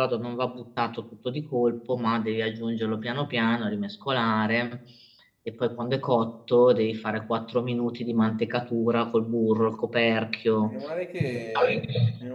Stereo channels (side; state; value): both; identical; correlation 1.00